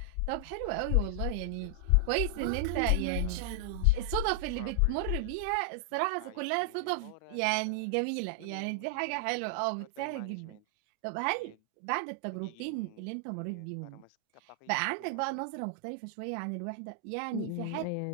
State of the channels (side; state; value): both; different; correlation -0.01